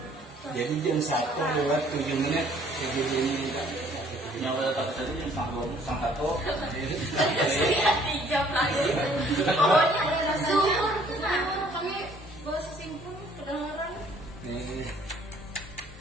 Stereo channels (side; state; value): both; normal; correlation 0.59